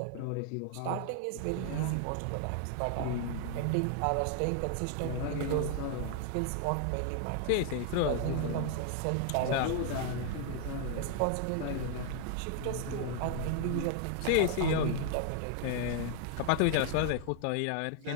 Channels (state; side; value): different; both; correlation 0.00